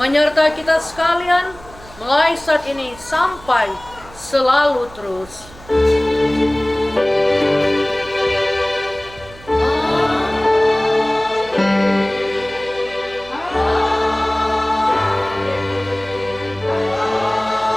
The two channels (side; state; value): right; noise; hum, 21 dB below the sound